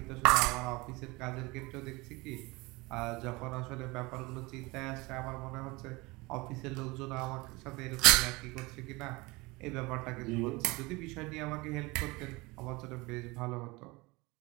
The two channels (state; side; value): quieter; left; 23.8 dB